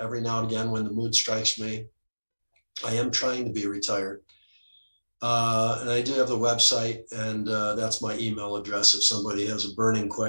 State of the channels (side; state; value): both; inverted; correlation -1.00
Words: now and again when the mood strikes me. I am trying to be retired. And I do have the website, and that's my email address if somebody has a burning